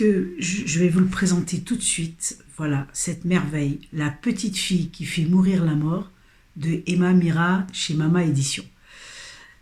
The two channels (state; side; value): identical; both; correlation 1.00